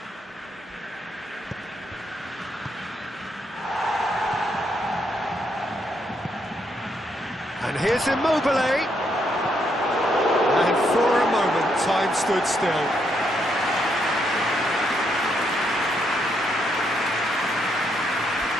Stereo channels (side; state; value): both; normal; correlation 0.76